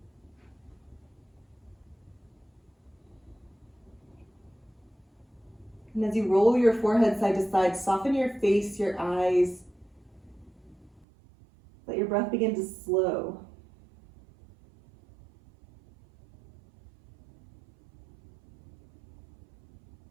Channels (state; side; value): drops out; left; at 11.1 s